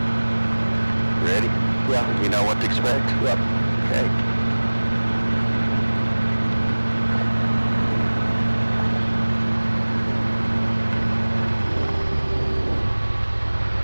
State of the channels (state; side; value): inverted; both; correlation -1.00